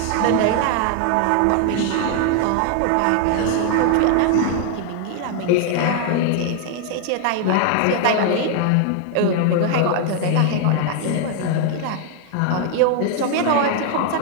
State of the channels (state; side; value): different; both; correlation 0.00